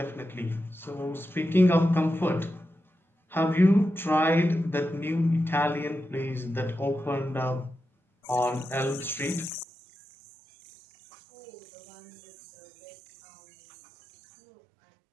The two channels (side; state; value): left; drops out; at 9.7 s